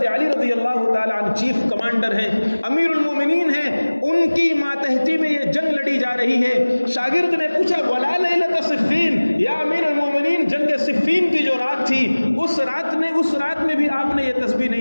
علی رضی اللہ تعالی عنہ چیف کمانڈر ہیں، امیر المومنین ہیں، ان کی ماتحتی میں یہ جنگ لڑی جا رہی ہے۔ شاگرد نے پوچھا ولا لیلۃ صفین، یا امیر المومنین، جنگ صفین کی جو رات تھی، اس رات میں بھی آپ نے یہ تسبیح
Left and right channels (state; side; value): inverted; both; correlation -1.00